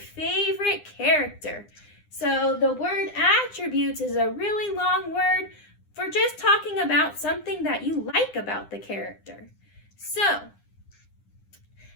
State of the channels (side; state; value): right; late; 9.8 ms